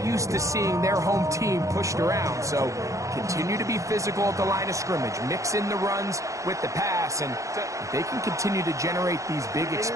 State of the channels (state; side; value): late; left; 0.15 ms